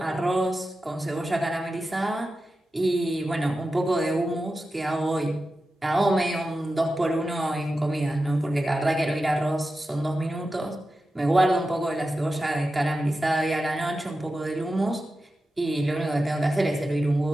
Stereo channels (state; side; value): normal; both; correlation 0.92